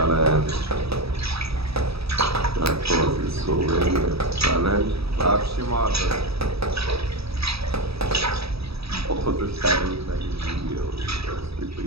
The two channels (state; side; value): late; left; 0.77 ms